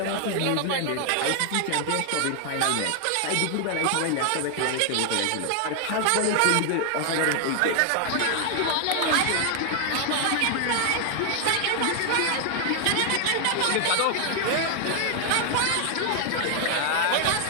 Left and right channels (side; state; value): both; different; correlation 0.00